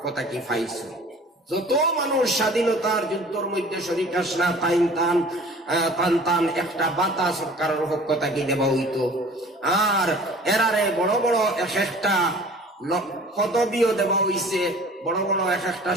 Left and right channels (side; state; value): both; normal; correlation 0.47